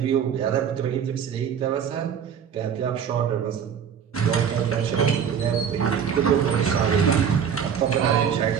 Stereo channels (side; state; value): left; quieter; 7.8 dB